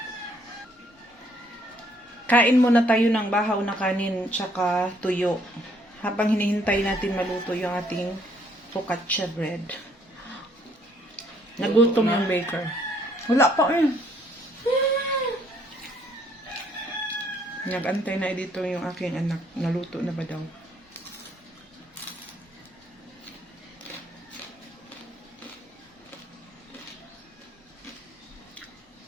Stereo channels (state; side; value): normal; both; correlation 0.66